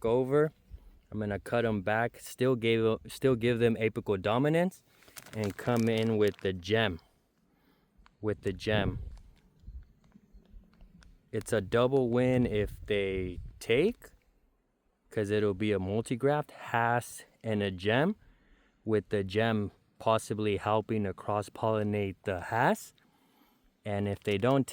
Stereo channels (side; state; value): both; identical; correlation 1.00